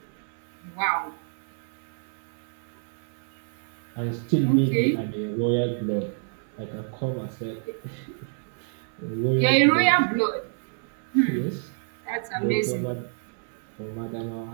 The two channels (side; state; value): left; silent; 60 dB below the other